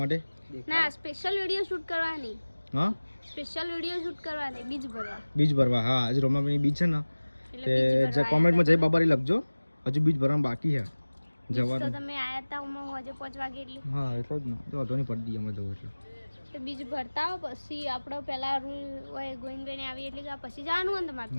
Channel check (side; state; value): both; inverted; correlation -1.00